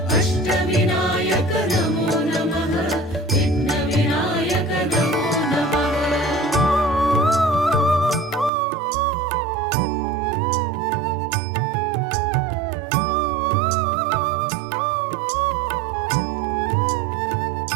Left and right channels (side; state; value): left; drops out; at 8.5 s